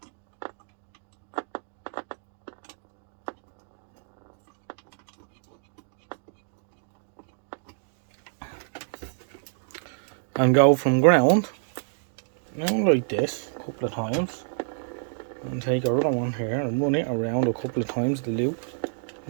and go from ground and like this a couple of times, and take our other one here and run it around a couple of times the loop,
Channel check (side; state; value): left; silent; digital silence